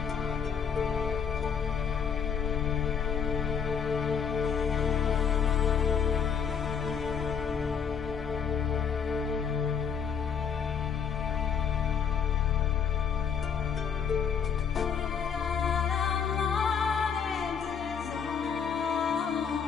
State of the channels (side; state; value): right; quieter; 7.1 dB